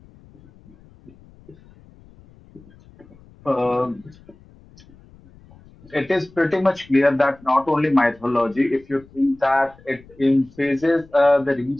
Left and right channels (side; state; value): left; noise; rumble, 25 dB below the sound